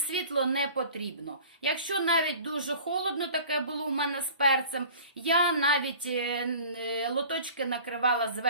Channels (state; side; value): inverted; both; correlation -0.43